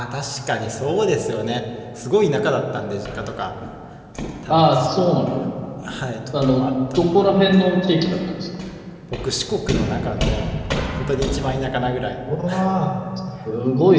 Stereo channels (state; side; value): identical; both; correlation 1.00